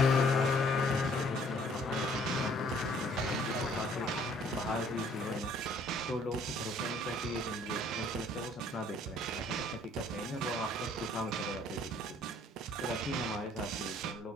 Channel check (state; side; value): normal; both; correlation 0.60